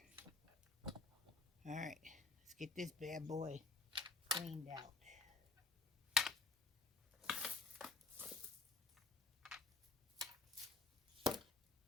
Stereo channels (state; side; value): quieter; right; 3.7 dB